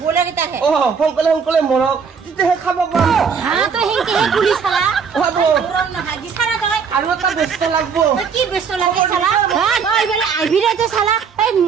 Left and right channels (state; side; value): quieter; left; 6.2 dB